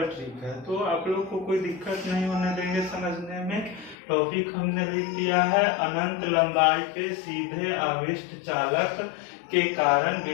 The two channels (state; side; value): drops out; right; at 4.0 s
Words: ट्रिक है। तो आप लोग को कोई दिक्कत नहीं होने देंगे समझने में। टॉपिक हमने लिख दिया है अनंत लंबाई के सीधे आवेष्ट चालक के कारण